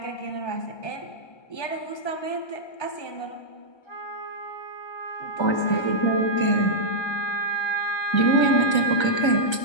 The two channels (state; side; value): late; right; 1.3 ms